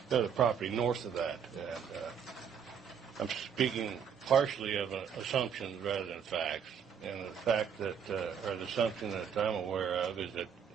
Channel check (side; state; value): left; quieter; 7.5 dB